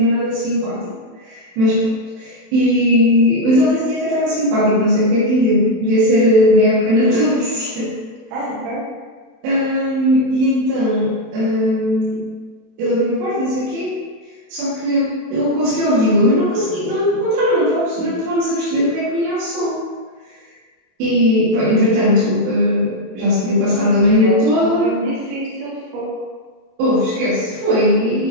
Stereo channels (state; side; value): late; left; 27 ms